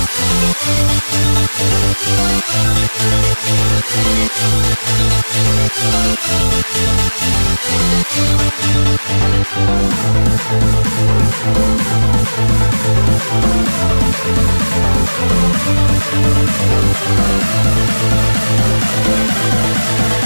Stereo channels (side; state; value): both; inverted; correlation -1.00